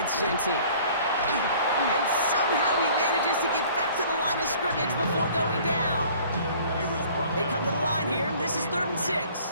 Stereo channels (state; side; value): inverted; both; correlation -0.52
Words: Genty. And somehow he manages to get back to the line of scrimmage before going down. They come to the line here. This is 3rd and